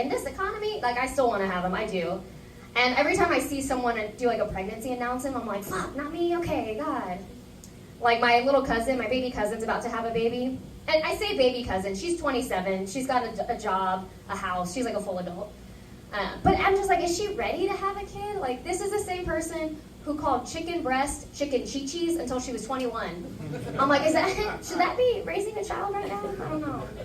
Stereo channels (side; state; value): both; identical; correlation 1.00